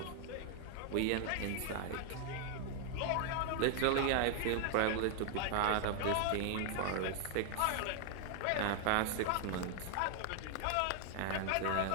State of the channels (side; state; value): both; different; correlation 0.00